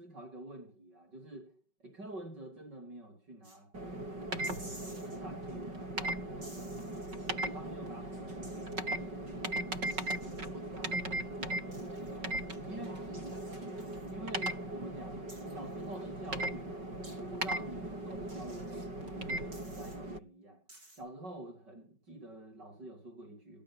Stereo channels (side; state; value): left; late; 5.3 ms